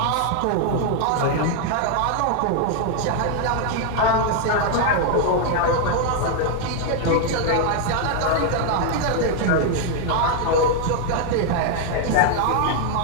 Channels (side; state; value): both; different; correlation 0.00